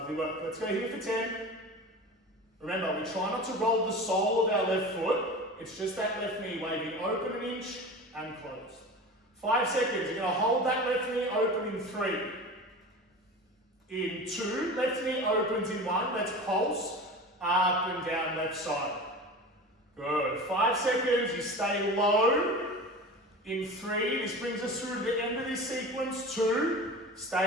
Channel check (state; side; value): normal; both; correlation 0.33